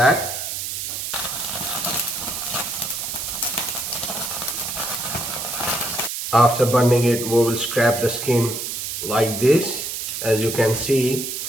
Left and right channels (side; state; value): right; noise; hiss, 4 dB below the sound